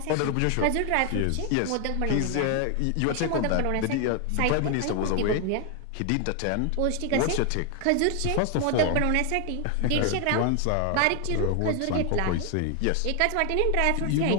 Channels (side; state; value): both; different; correlation 0.01